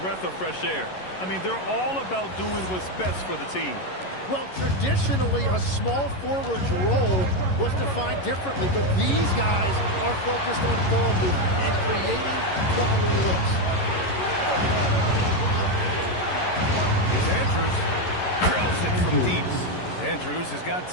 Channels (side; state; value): right; late; 11 ms